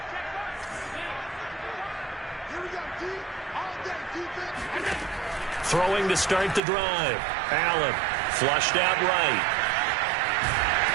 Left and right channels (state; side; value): drops out; left; at 6.6 s